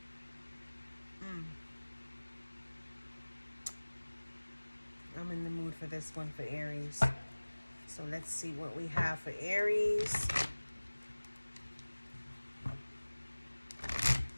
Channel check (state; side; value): inverted; both; correlation -1.00